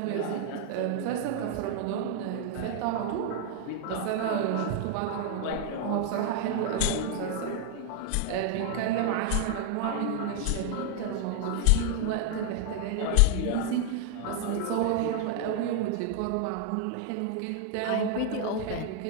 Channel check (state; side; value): different; both; correlation 0.00